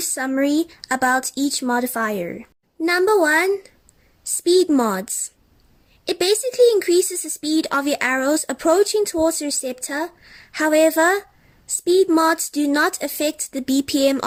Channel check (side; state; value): both; identical; correlation 1.00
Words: summary about each modifier. Number 1, speed mods. It basically increases the speed of your arrows approaching towards the receptor. However, speed mods do not affect the BPM